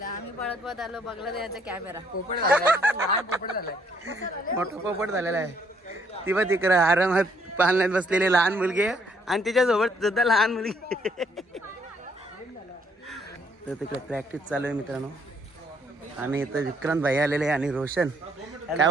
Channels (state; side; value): normal; both; correlation 0.68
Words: आम्ही पळत आलो, बघला त्याचा कॅमेरा मोठा पोपट झालेला आहे. ती बघ तिकडं आरामात पालण्यात बसलेली लहान मुलगी आहे आणि तिच्यासोबत सुद्धा लहान मुलगी. तर तिकडे प्रॅक्टिस चालू आहे मित्रांनो. आणि इथं विक्रांत भाई आलेले आणि रोशन. काय